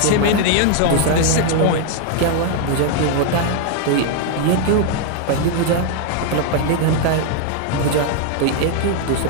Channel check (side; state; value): both; different; correlation 0.00